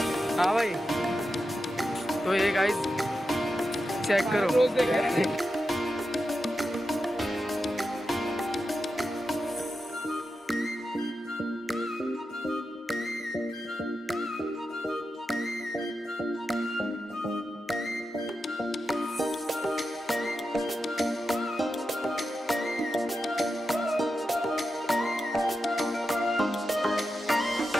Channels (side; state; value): both; normal; correlation 0.89